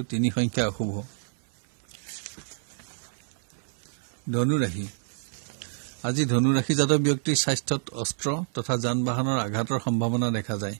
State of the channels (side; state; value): left; silent; 60 dB below the other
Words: 3 সংখ্যা অশুভ। ধনু ৰাশি আজি ধনু ৰাশিজাত ব্যক্তিৰ স্বাস্থ্যত অস্ত্ৰ তথা যান বাহনৰ আঘাতৰ সম্ভাৱনা দেখা যায়।